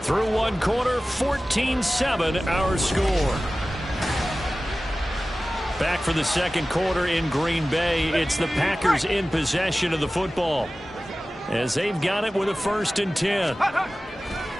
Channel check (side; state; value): both; normal; correlation 0.96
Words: Through one quarter, 14-7 our score. Back for the second quarter in Green Bay. It's the Packers in possession of the football as they've got it with a 1st and 10.